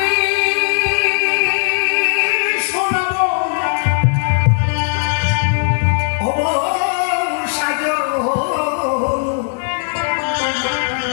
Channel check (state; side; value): silent; right; digital silence